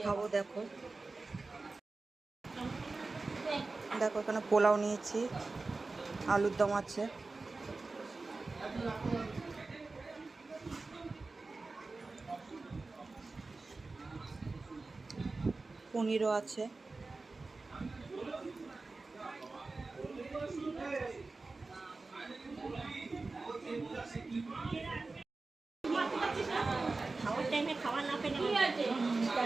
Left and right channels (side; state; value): left; quieter; 3.6 dB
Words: খাবো দেখো। দেখো এখানে পোলাও নিয়েছি, আলুর দম আছে, পনিরও আছে, খাওয়ার টাইমে খাওয়া না পেলে